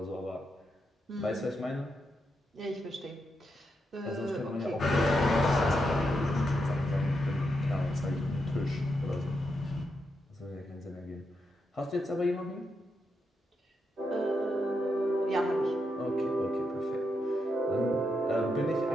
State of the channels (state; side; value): normal; both; correlation 0.83